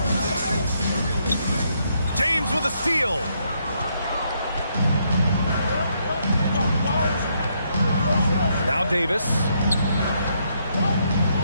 James with a steal. Now Davis.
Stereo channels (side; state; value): both; inverted; correlation -0.75